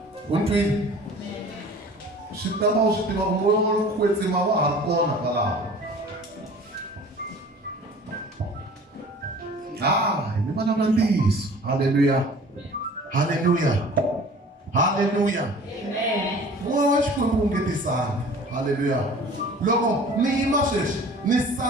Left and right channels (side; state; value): both; normal; correlation 0.46